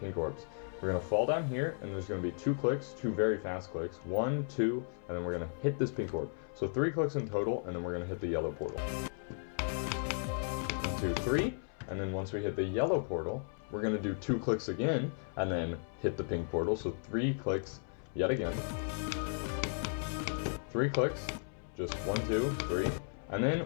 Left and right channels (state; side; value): silent; right; 54 dB below the other